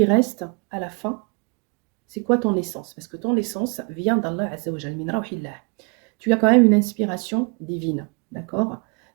reste à la fin? C'est quoi ton essence? Parce que ton essence vient d'Allah Azza wa Jal, min rawhillah. Tu as quand même une inspiration divine, d'accord?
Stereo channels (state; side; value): quieter; left; 34.1 dB